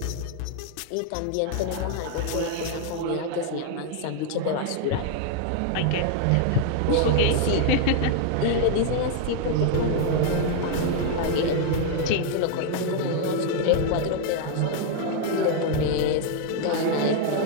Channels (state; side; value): different; both; correlation 0.00